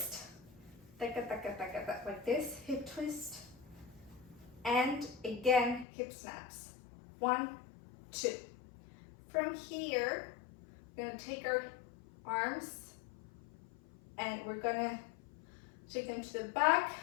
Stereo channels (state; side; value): drops out; right; at 5.9 s